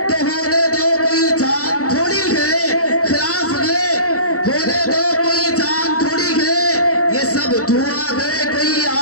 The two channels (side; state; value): right; late; 0.65 ms